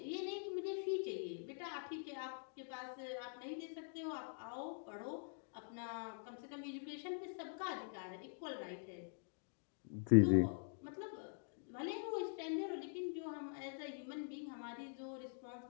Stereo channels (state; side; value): silent; right; digital silence